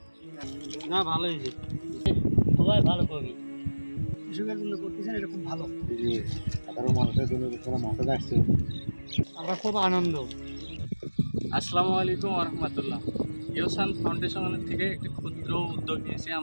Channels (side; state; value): both; inverted; correlation -1.00